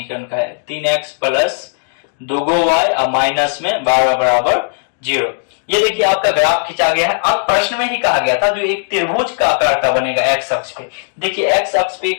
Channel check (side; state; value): right; silent; digital silence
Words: का है। 3x प्लस 2y और माइनस में 12 बराबर 0। ये देखिए आपका ग्राफ खींचा गया है। अब प्रश्न में ही कहा गया था जो एक त्रिभुज का आकार का बनेगा x अक्ष पे। देखिए x अक्ष पे